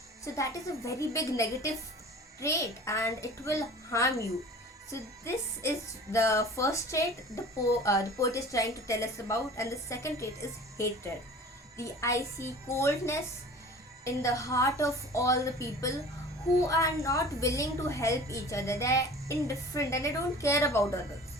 So that is a very big negative trait and it will harm you. So this is the first trait the poet is trying to tell us about, and the second trait is hatred. The icy coldness in the heart of all the people who are not willing to help each other. They are indifferent and they don't care about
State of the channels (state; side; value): normal; both; correlation 0.42